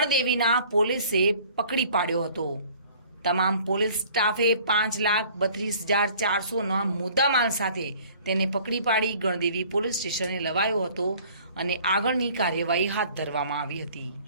પોલીસે પકડી પાડ્યો હતો। તમામ પોલીસ સ્ટાફે ₹5,32,400ના મુદ્દામાલ સાથે તેને પકડી પાડી ગણદેવી પોલીસ સ્ટેશને લવાયો હતો અને આગળની કાર્યવાહી હાથ ધરવામાં આવી હતી।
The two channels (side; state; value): both; inverted; correlation -0.52